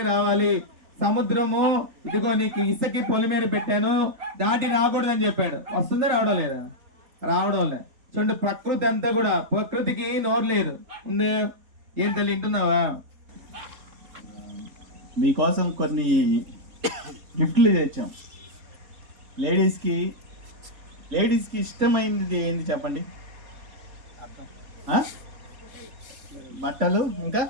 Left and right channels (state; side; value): late; left; 3.8 ms